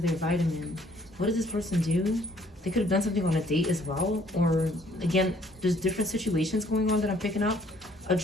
vitamin. What does this person do? They could have done something on a date as well. Or again, there's different situations going on that I'm picking up. A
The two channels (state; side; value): normal; both; correlation 0.62